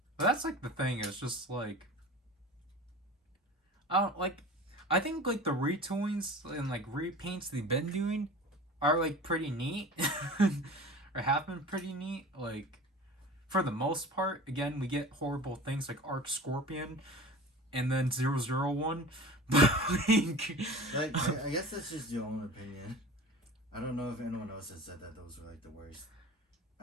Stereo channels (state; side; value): normal; both; correlation 0.37